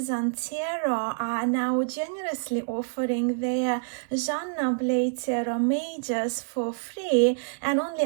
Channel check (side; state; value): left; silent; 60 dB below the other